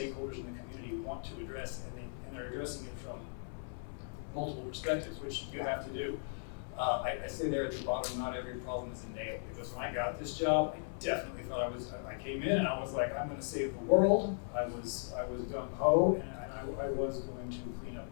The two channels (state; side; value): silent; right; 53 dB below the other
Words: in the community want to address, and they're addressing it from multiple perspectives, which you have to do. I say there at the bottom, not every problem is a nail, because when I got this job, I definitely thought I came in and I was like, I'm going to save the world. I was gung-ho, and I was going to clean up